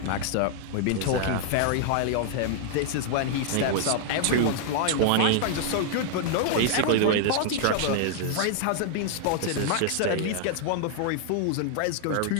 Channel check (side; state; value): both; different; correlation -0.01